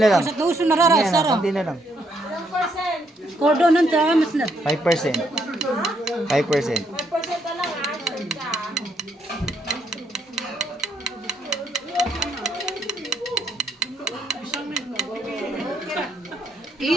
lang. Basta tuso na rara, Yan, sara. konti na lang. Kordonan sa mas na. 5%. 5%. 5% na lang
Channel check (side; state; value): both; normal; correlation 0.73